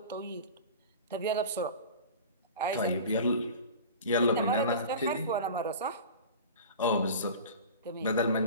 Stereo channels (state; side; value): inverted; both; correlation -0.35